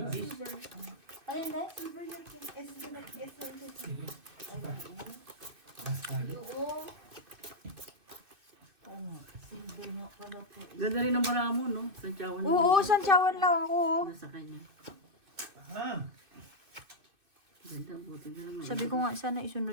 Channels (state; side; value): late; left; 2.6 ms